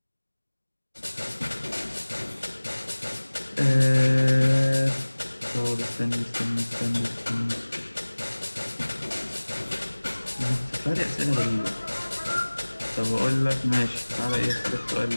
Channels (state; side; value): inverted; both; correlation -1.00